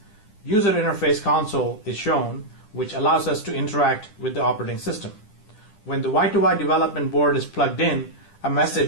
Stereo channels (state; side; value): late; right; 10 ms